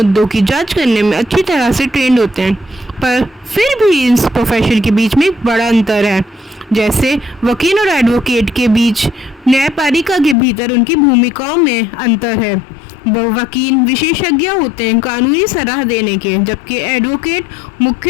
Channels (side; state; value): right; drops out; at 10.4 s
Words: की जांच करने में अच्छी तरह से ट्रेंड होते हैं। पर फिर भी इस प्रोफेशन के बीच में एक बड़ा अंतर है। जैसे वकील और एडवोकेट के बीच न्यायपालिका के भीतर उनकी भूमिकाओं में अंतर है। वकील विशेषज्ञ होते हैं कानूनी सलाह देने के, जबकि एडवोकेट